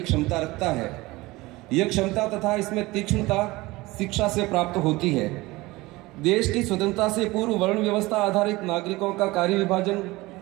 क्षमता रखता है। यह क्षमता तथा इसमें तीक्ष्णता शिक्षा से प्राप्त होती है। देश की स्वतंत्रता से पूर्व वर्ण व्यवस्था आधारित नागरिकों का कार्य विभाजन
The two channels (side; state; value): left; quieter; 20.8 dB